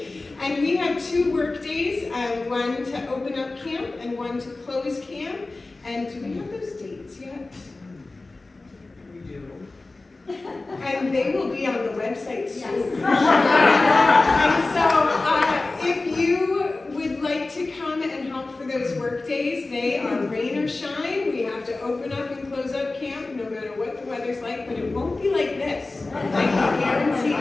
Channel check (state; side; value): quieter; right; 3.3 dB